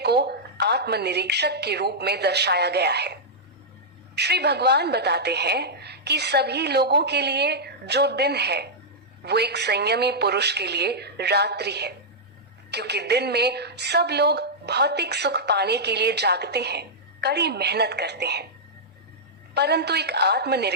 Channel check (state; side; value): normal; both; correlation -0.09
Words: को आत्मनिरीक्षक के रूप में दर्शाया गया है। श्री भगवान बताते हैं कि सभी लोगों के लिए जो दिन है वो एक संयमी पुरुष के लिए रात्रि है, क्योंकि दिन में सब लोग भौतिक सुख पाने के लिए जागते हैं, कड़ी मेहनत करते हैं, परंतु एक